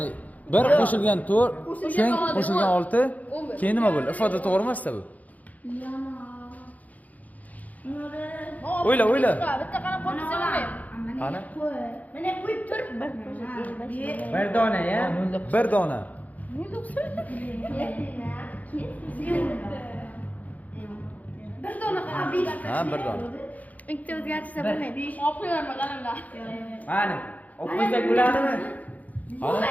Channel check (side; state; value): right; late; 0.076 ms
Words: 1 qo'shilgan 4, teng qo'shilgan 6, keyin nima bo'ldi? Ifoda to'g'ri emas-da bu. O'yla. Bitta qarab qo'ysa bo'lmaydi. Qani? Mana qo'yib tur. Bir dona ya. 1 dona. Bir dona qarab. Ha, 1 dona. Ikkita o'zgartirsa bo'lmaydi. Olib qo'yarman qalamda. Mana. Olib qo'ysak bo'ladimi?